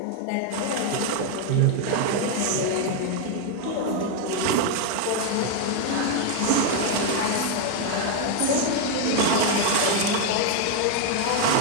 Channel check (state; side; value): different; both; correlation 0.01